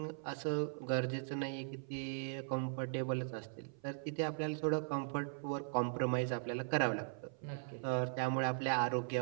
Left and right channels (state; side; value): silent; left; 52 dB below the other